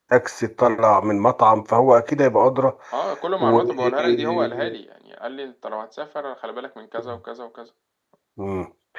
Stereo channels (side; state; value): both; identical; correlation 1.00